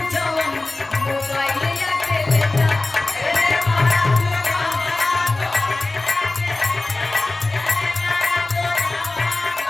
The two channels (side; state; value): right; quieter; 3.1 dB